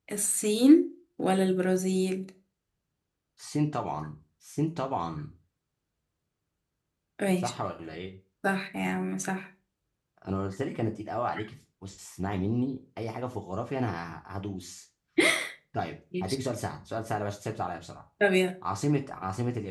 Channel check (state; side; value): identical; both; correlation 1.00